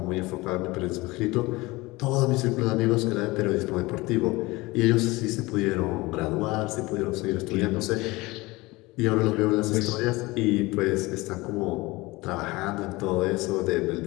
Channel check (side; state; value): right; quieter; 21.8 dB